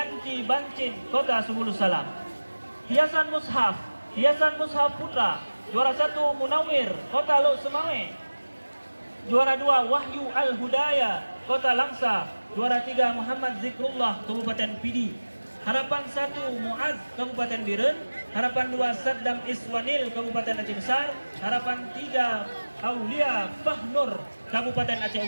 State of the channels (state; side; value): inverted; both; correlation -1.00